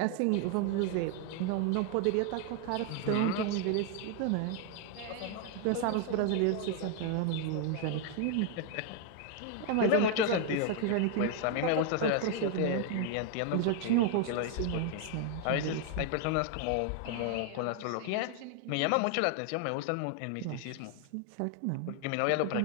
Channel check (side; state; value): both; different; correlation 0.00